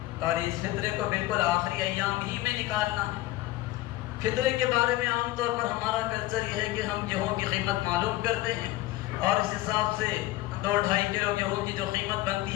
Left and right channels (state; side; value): quieter; right; 17.2 dB